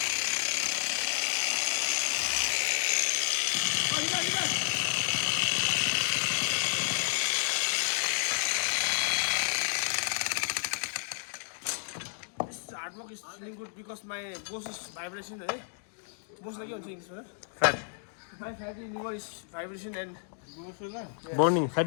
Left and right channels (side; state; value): right; silent; digital silence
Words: work is feeling good because my boss is vibration. Boss like English, Fat. my fatty liver is vibration and Burning.